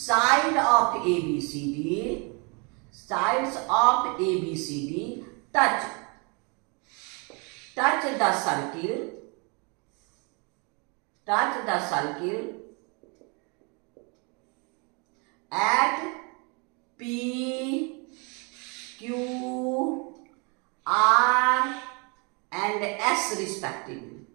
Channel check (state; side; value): quieter; left; 32.5 dB